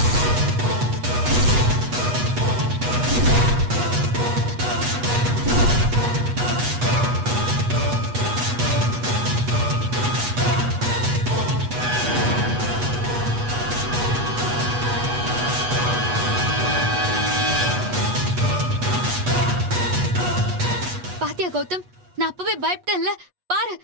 பாத்தியா கௌதம், நான் அப்பவே பயப்பட்டேன்ல. பாரு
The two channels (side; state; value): left; late; 8.2 ms